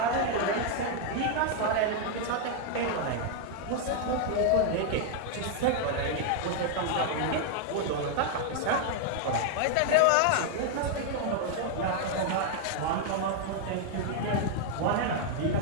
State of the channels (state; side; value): different; both; correlation 0.00